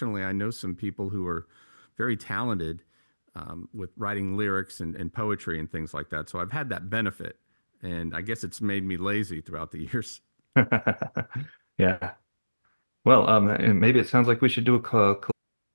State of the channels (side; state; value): both; inverted; correlation -1.00